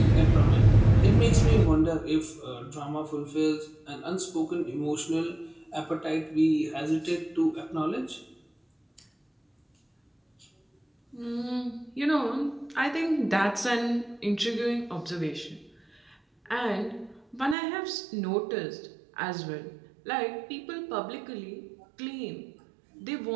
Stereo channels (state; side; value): drops out; left; at 17.6 s